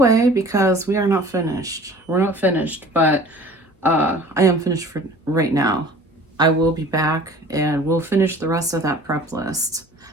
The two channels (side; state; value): both; normal; correlation 0.46